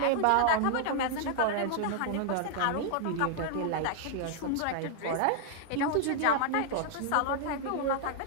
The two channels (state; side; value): different; both; correlation -0.01